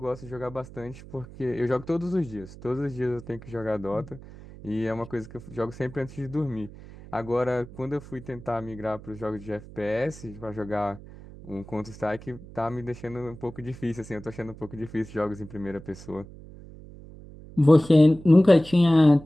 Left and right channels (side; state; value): right; noise; hum, 17 dB below the sound